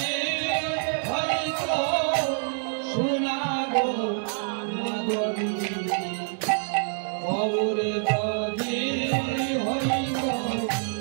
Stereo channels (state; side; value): silent; left; 61 dB below the other